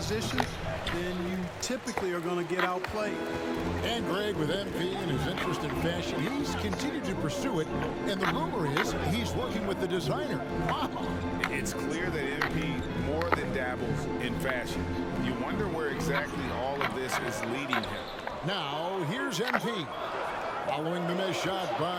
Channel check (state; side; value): identical; both; correlation 1.00